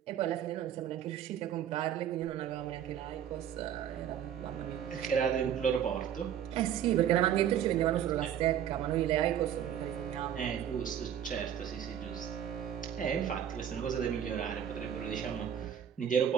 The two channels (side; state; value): left; quieter; 9.6 dB